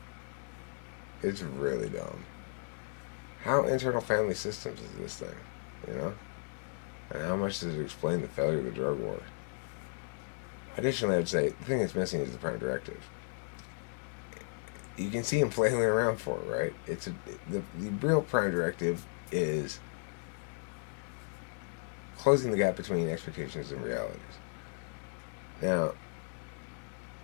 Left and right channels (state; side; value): silent; right; digital silence